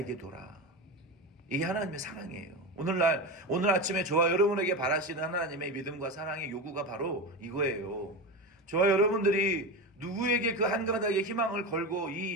둬라. 이게 하나님의 사랑이에요. 오늘 아침에 저와 여러분에게 바라시는 하나님의 믿음과 사랑의 요구가 바로 이거예요. 저와 여러분들이 누구에게 그 한 가닥의 희망을 걸고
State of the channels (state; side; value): normal; both; correlation 0.21